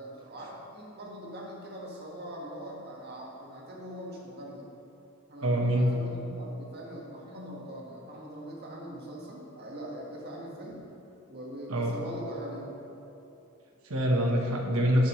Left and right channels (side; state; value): both; normal; correlation 0.62